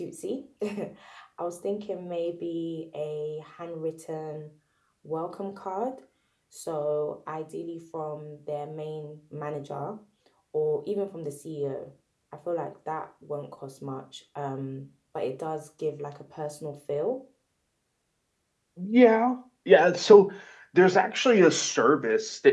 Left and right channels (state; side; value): identical; both; correlation 1.00